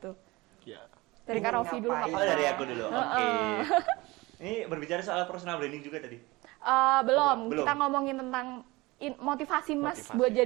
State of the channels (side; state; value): left; quieter; 21.9 dB